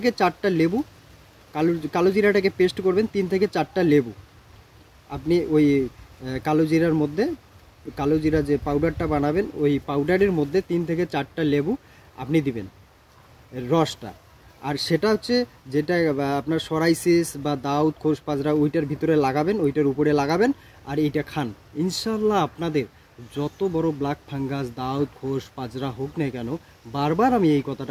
4টা লেবু, কালো জিরাটাকে পেস্ট করবেন, 3 থেকে 4টা লেবু আপনি ওই কালো জিরার মধ্যে, কালো জিরা যে পাউডারটা বানাবেন ওই পাউডারের মধ্যে 3 থেকে 4টা লেবু আপনি দিবেন, রসটা। আর সেটা হচ্ছে যেটা আপনার সরাইসিস বা দাউদ খোস পাজরা ওইটার ভিতরে লাগাবেন, ওইটার উপরে লাগাবেন। আর এইটা খান, ইনশাল্লাহ আপনাদের যত বড় ব্ল্যাক ফাঙ্গাস, দাউদ, খোস, পাজরা হোক না কেন, বারবার আমি এই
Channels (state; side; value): identical; both; correlation 1.00